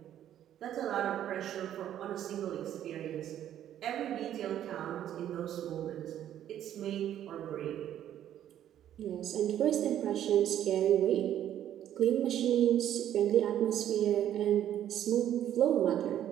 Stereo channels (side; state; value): left; quieter; 11.1 dB